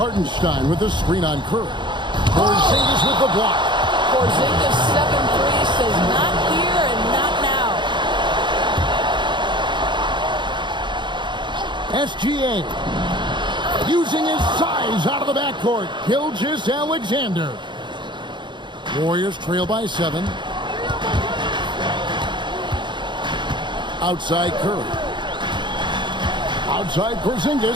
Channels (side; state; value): left; late; 0.23 ms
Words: with the screen on Curry. Porzingis with the block. Porzingis 7-3 says not here and not now. SGA using his size out of the backcourt. Gilgeous-Alexander. Warriors trail by 7. Outside Curry. Outside